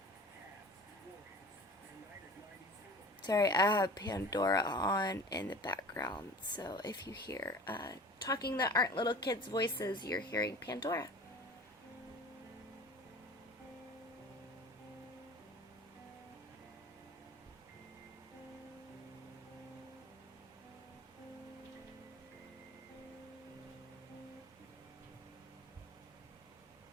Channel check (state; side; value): normal; both; correlation 0.41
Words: Sorry, I have Pandora on in the background, so if you hear talking that aren't little kids' voices, you're hearing Pandora.